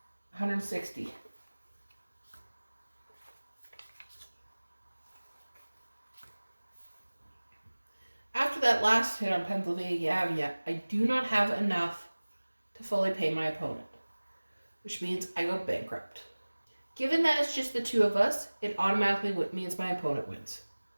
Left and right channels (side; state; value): both; inverted; correlation -1.00